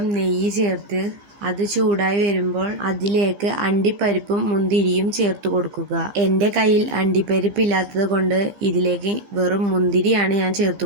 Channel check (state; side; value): late; left; 15 ms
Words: നെയ്യ് ചേർത്ത് അത് ചൂടായി വരുമ്പോൾ അതിലേക്ക് അണ്ടിപ്പരിപ്പും മുന്തിരിയും ചേർത്ത് കൊടുക്കുക. എൻ്റെ കയ്യിൽ അണ്ടിപ്പരിപ്പ് ഇല്ലാത്തത് കൊണ്ട് ഇതിലേക്ക് വെറും മുന്തിരിയാണ് ഞാൻ ചേർത്ത്